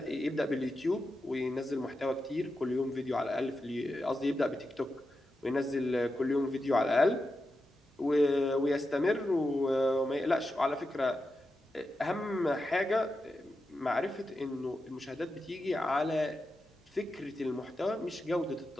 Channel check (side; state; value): both; normal; correlation 0.89